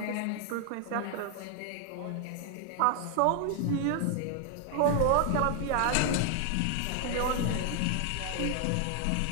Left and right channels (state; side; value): different; both; correlation 0.00